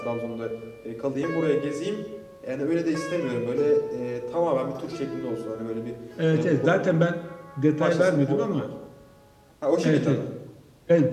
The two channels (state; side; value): identical; both; correlation 1.00